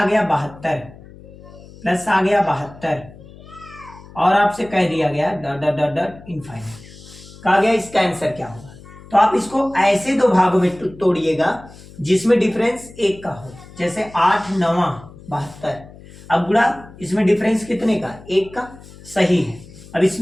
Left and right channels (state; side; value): noise; left; hum, 20 dB below the sound